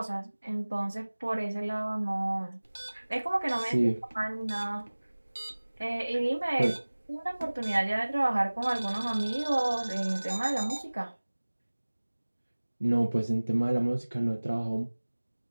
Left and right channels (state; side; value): inverted; both; correlation -1.00